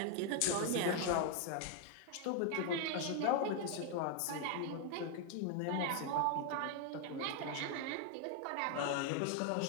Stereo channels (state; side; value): different; both; correlation 0.01